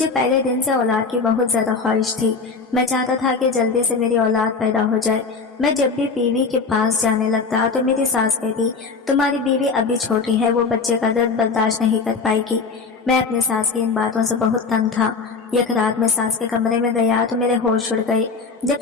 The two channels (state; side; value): quieter; right; 4.7 dB